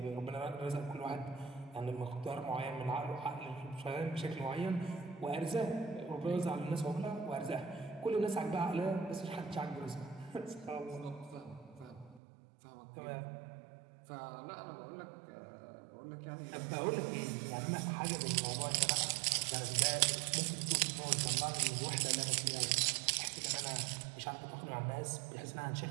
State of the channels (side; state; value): left; drops out; at 12.2 s